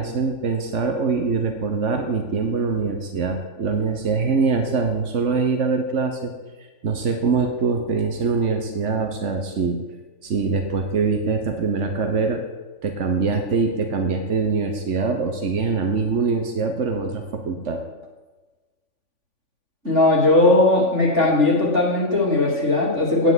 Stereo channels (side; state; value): left; late; 3.5 ms